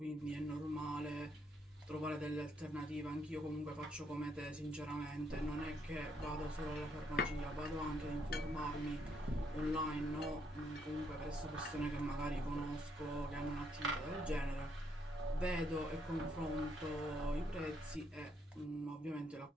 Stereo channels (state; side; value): normal; both; correlation 0.73